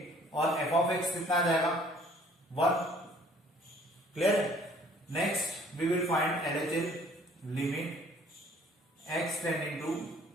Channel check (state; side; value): normal; both; correlation 0.57